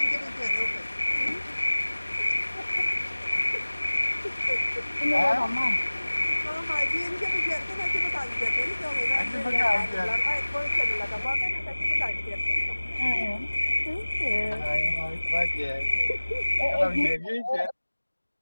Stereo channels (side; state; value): both; inverted; correlation -1.00